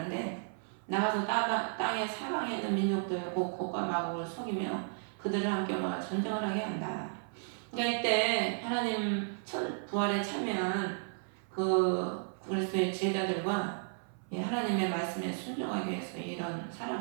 나가서 땅의 사방에 있는 민족들 곡과 마곡을 속이며 그들을 함께 모아 전쟁을 하게 한다. 그러니까 이때 하나님 부활에 참여한 그 그리스도의 제자들과 하나님의 말씀에 순종하기 위해서 이런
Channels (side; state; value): left; silent; 55 dB below the other